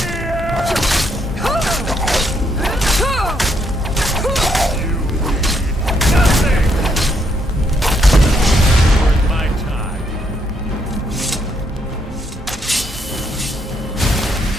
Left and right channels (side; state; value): both; normal; correlation 0.74